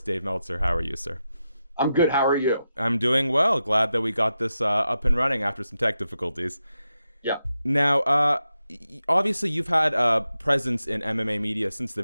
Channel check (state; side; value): inverted; both; correlation -0.88